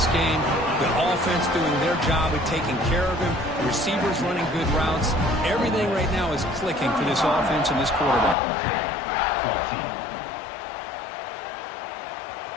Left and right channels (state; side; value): drops out; right; at 8.3 s